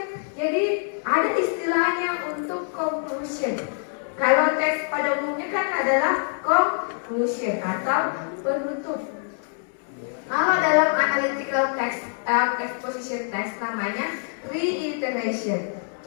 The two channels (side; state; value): right; silent; 62 dB below the other